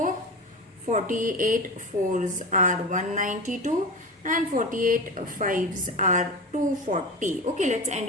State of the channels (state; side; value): normal; both; correlation 0.27